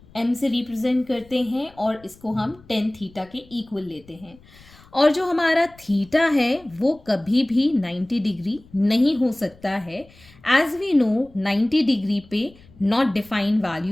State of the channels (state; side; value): noise; left; rumble, 26 dB below the sound